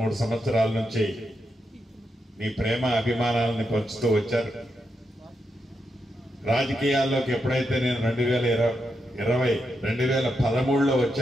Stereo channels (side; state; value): both; normal; correlation 0.84